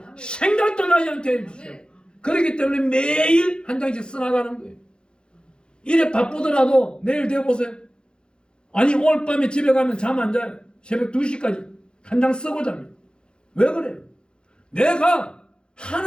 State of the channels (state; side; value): late; right; 0.050 ms